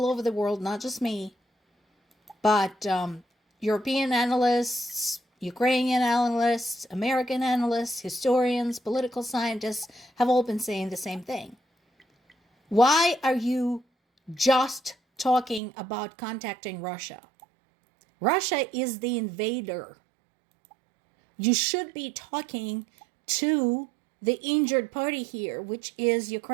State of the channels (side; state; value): left; drops out; at 15.6 s